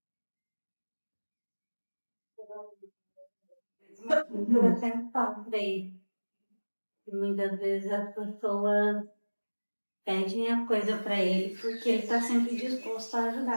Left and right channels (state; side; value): inverted; both; correlation -1.00